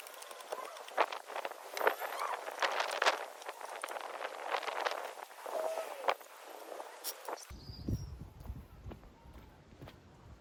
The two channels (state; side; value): identical; both; correlation 1.00